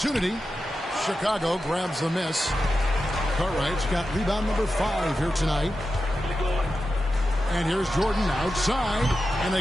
Chicago grabs the miss. Cartwright's got rebound number 5 here tonight. And here's Jordan outside. And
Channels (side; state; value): both; normal; correlation 0.91